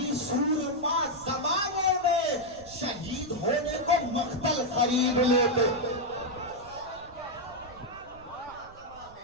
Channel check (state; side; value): noise; right; rumble, 22 dB below the sound